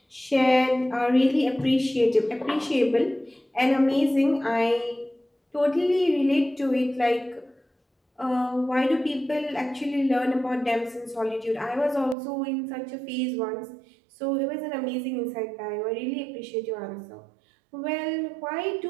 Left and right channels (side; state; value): left; drops out; at 12.2 s